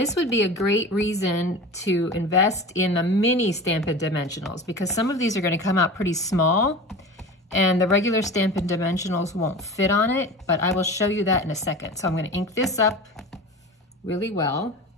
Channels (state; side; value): normal; both; correlation 0.33